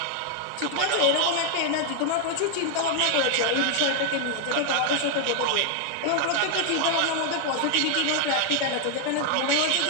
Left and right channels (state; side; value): different; both; correlation 0.00